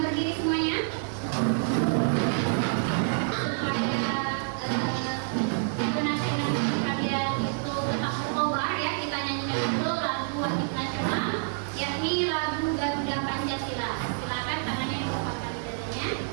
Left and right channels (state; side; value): silent; left; digital silence